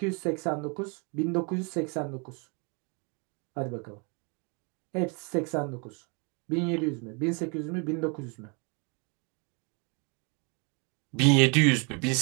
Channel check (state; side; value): quieter; left; 33.8 dB